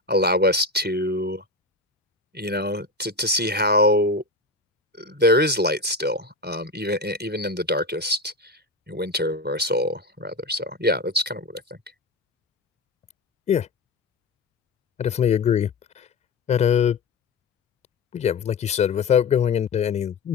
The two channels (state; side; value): quieter; right; 3.1 dB